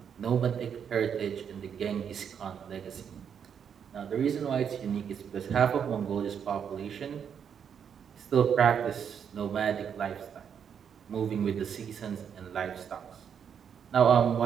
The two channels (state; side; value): quieter; left; 7.7 dB